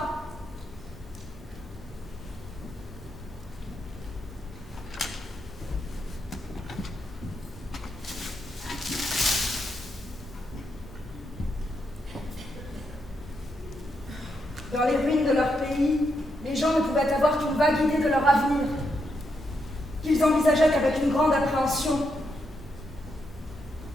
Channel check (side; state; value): both; normal; correlation 0.81